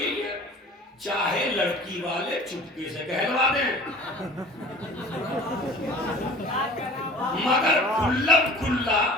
یہی ہے، چاہے لڑکی والے چپکے سے کہلوا دیں مگر کھلم کھلا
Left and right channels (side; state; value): both; normal; correlation 0.44